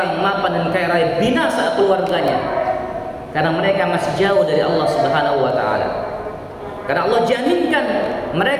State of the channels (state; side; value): identical; both; correlation 1.00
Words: yang mapan dan kaya raya binasa keluarganya karena mereka masih jauh dari Allah Subhanahu wa taala. Karena Allah jaminkan